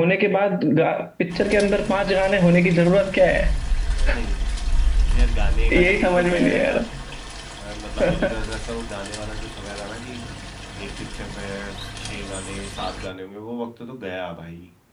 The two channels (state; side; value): identical; both; correlation 1.00